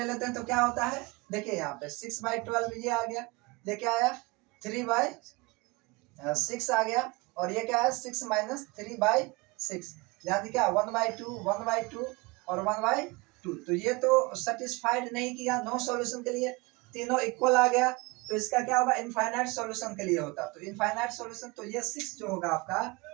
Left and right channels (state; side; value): quieter; left; 25.3 dB